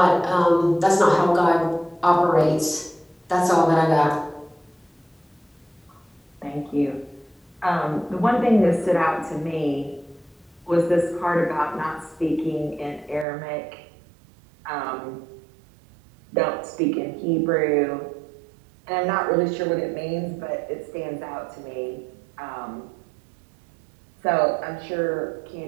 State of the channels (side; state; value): left; drops out; at 13.2 s